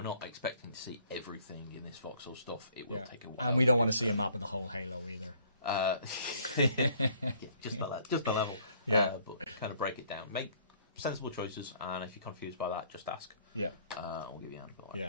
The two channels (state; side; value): inverted; both; correlation -0.60